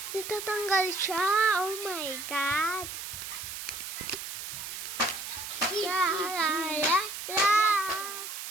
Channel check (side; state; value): right; noise; hiss, 7 dB below the sound